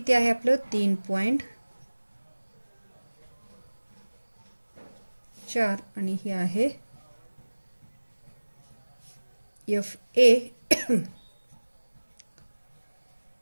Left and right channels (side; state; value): both; inverted; correlation -1.00